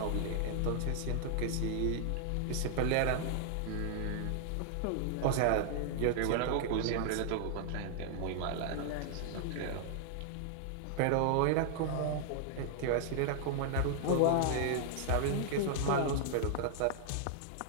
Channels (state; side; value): different; both; correlation -0.01